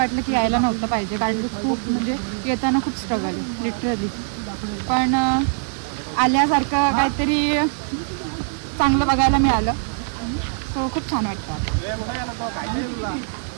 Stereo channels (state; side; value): silent; left; digital silence